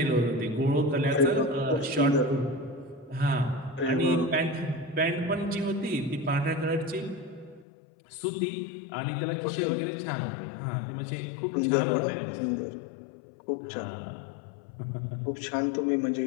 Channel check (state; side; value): drops out; right; at 7.7 s